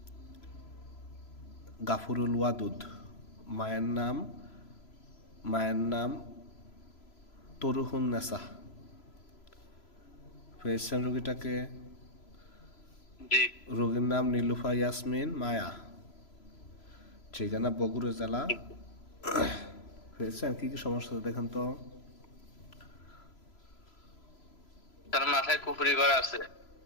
গাফুরুল ওয়াদুদ। মায়ের নাম তরুহুন নেসা। পেয়েছেন রোগীটাকে? জি। রোগীর নাম নীলুফা ইয়াসমিন মায়া। ঠিকানা বগুড়া জেলা। পেয়েছেন? কি কি সমস্যা দেখেন তো? তার মাথায় কুফরি করা আছে,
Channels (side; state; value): right; late; 3.0 ms